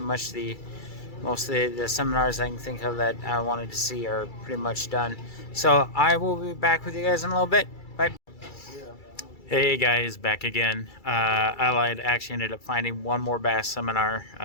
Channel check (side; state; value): right; late; 2.3 ms